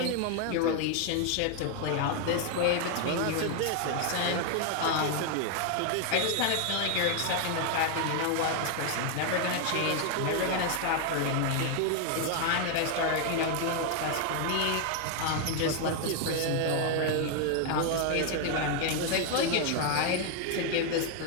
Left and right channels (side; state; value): both; different; correlation 0.00